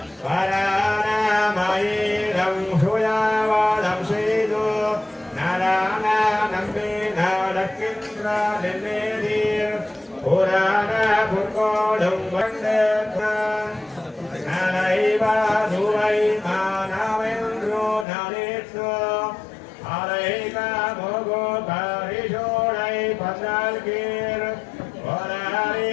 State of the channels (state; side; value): drops out; right; at 18.1 s